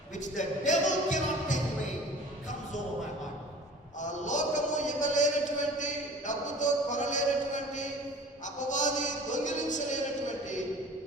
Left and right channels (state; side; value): normal; both; correlation 0.44